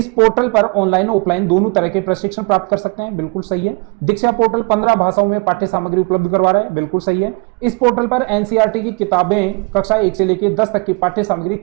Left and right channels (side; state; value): left; quieter; 32.9 dB